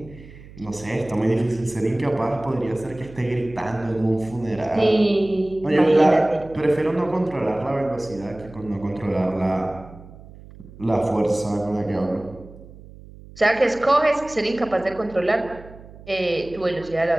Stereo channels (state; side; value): noise; right; hum, 19 dB below the sound